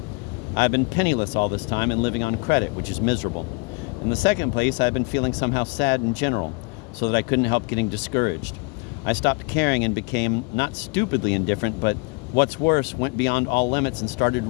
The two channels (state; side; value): quieter; right; 29.8 dB